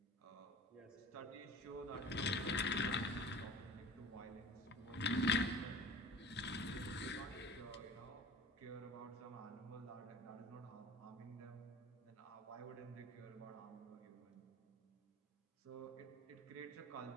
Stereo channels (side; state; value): both; normal; correlation 0.40